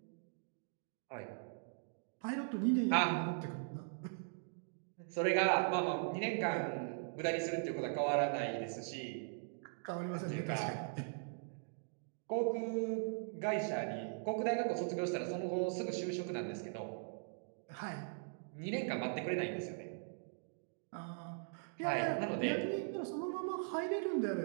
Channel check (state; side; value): silent; left; digital silence